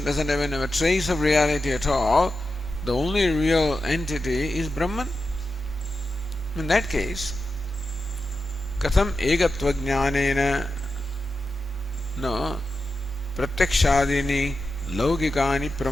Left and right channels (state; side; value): normal; both; correlation 0.90